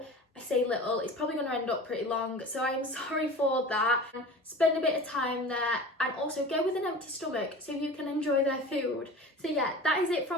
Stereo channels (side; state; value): both; normal; correlation 0.37